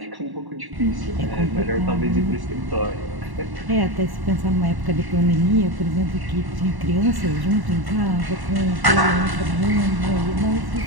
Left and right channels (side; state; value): left; late; 1.1 ms